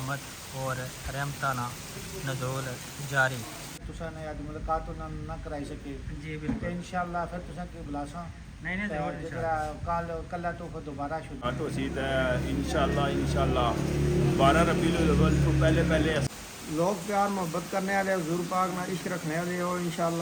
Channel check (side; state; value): both; identical; correlation 1.00